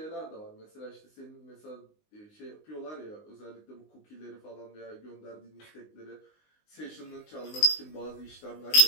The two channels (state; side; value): late; right; 19 ms